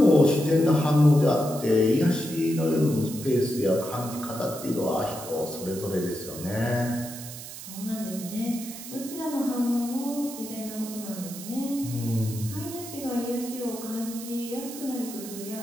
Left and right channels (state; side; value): noise; right; hiss, 12 dB below the sound